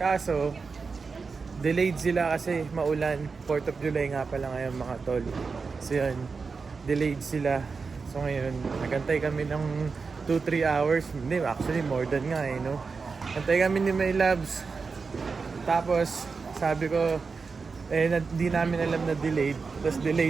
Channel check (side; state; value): left; quieter; 4.8 dB